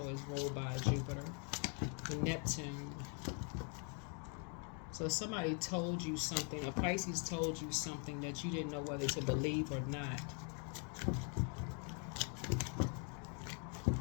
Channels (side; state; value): right; quieter; 39.6 dB